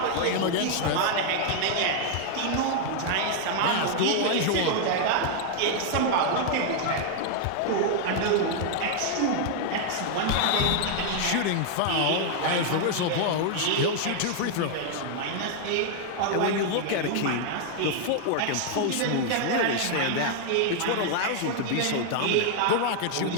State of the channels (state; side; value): different; both; correlation 0.00